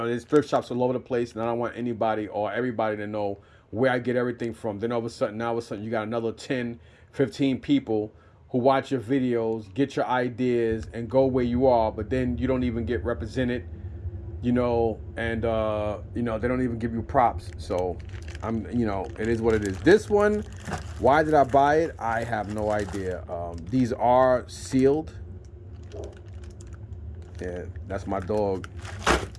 there's thrift shops all over the place, and I don't want anybody or everybody to know where I get everything from. Then all of a sudden, you got another 10, 15 people who watch your videos, get your ideas, and go where you are, but then you don't even get represented, you know, and, you know, they don't even give you props. So, you know, it is what it is. This one, why did I buy it? I have no idea. These are sealed. Yeah, that's my dog,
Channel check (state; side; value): identical; both; correlation 1.00